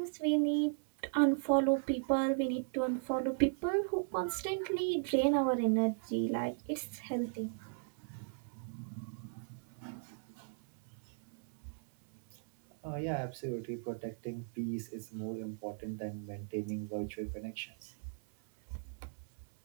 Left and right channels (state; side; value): silent; left; 53 dB below the other